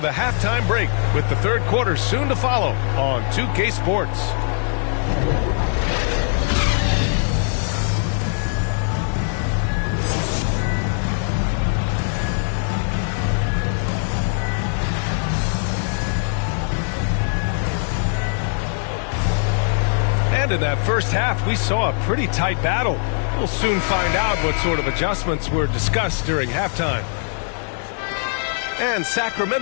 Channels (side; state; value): right; silent; digital silence